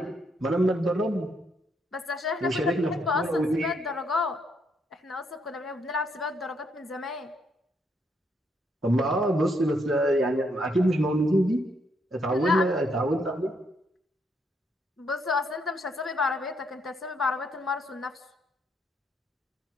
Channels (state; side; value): normal; both; correlation 0.74